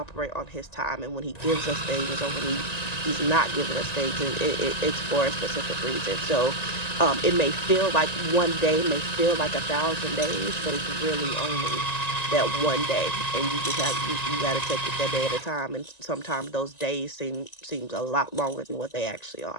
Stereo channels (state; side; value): late; right; 1.9 ms